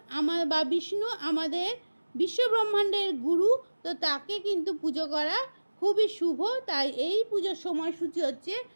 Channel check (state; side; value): inverted; both; correlation -1.00